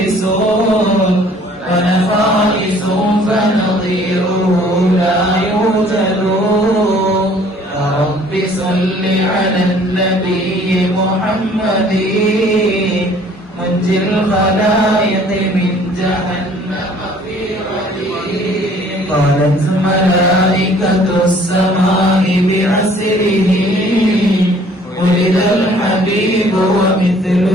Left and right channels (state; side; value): normal; both; correlation 0.56